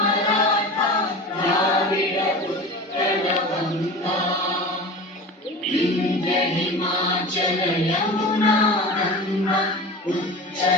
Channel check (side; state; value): both; normal; correlation 0.33